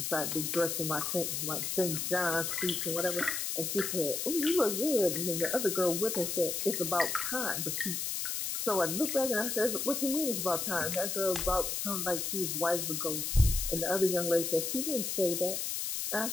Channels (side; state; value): left; noise; hiss, 2 dB below the sound